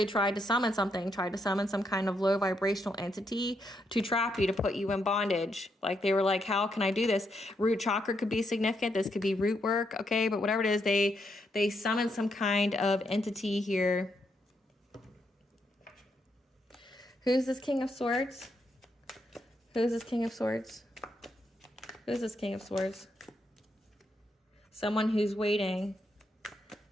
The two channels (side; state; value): both; normal; correlation 0.79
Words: tried to summon something, tried to summon some kind of low vibrational entity to trap you, to put you in bondage. Like they were like, how can I do this? Root chakra could be significant. This could be root work. Okay. But whatever it is, they summon some kind of entity here. Who's this King of Swords? Who's this King of Swords? Who's this King of Swords? Someone who's waiting.